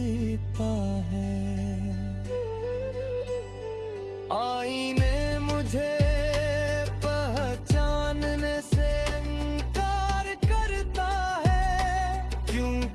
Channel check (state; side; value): identical; both; correlation 1.00